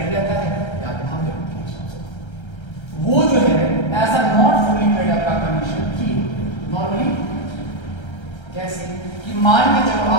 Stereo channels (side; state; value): right; late; 1.3 ms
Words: रहता है या फिर हम जरूरत के हिसाब से वो जो है ऐसा नॉट फुल्ली पेड अप का कंडीशन की नॉर्मली कैसे कि मान के चलो